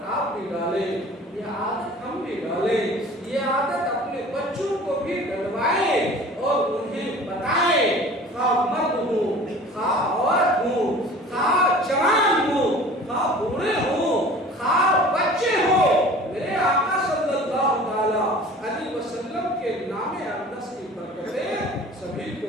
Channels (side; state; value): both; normal; correlation 0.43